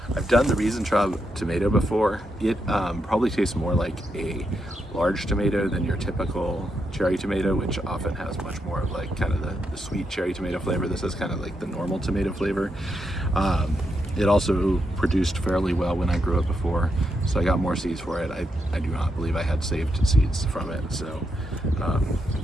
I've done the Riesentraub tomato before. It probably tastes more like a large tomato than your typical cherry tomato, which often has much more of like kind of the sweet cherry tomato flavor. This is kind of like the normal tomato flavor. It also produced fairly well when I grew it before, so I got more seeds for it. I do not believe I had saved seeds from it, so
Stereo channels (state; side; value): normal; both; correlation 0.82